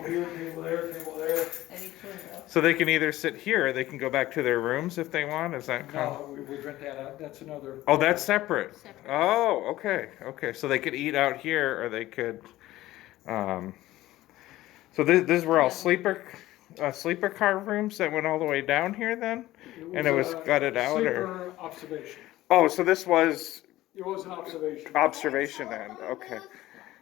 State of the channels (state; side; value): quieter; right; 16.0 dB